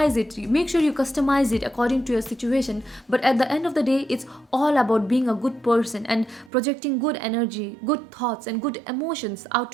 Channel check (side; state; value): left; drops out; at 6.5 s